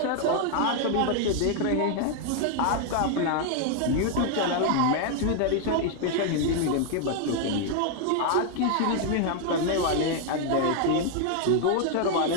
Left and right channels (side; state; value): both; different; correlation 0.00